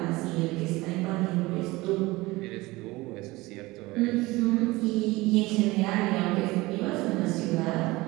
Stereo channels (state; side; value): quieter; left; 20.9 dB